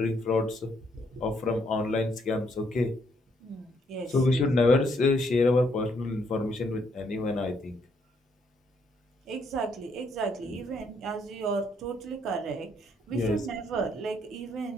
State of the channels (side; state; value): both; normal; correlation 0.72